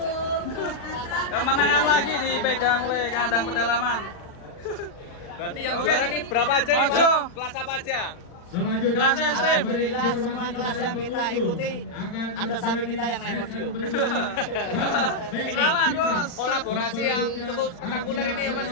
kemenangan lagi dipegang oleh kandang pedalaman. Berarti yang Oke. juara ini berapa aja? Mojo. Kelas apa aja? Selanjutnya Kelas ekstrim. Alhamdulillah semua kelas yang kita ikuti ada sapi kita yang naik podium. Selamat bos. Kolaborasi yang cukup spektakuler ini ya Mas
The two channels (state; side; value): late; right; 39 ms